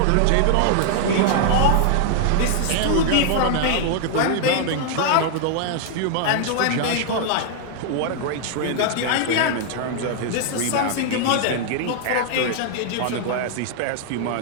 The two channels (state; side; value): different; both; correlation 0.00